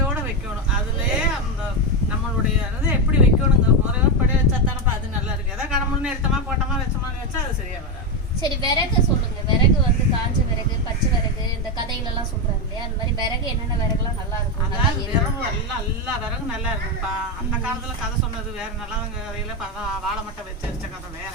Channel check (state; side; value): normal; both; correlation 0.10